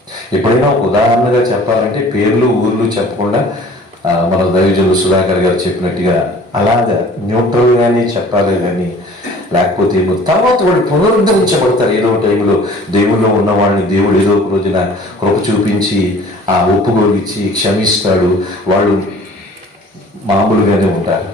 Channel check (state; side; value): normal; both; correlation 0.49